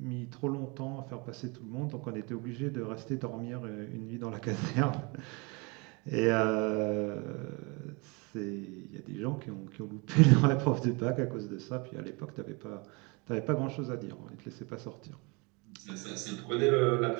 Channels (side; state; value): left; quieter; 29.2 dB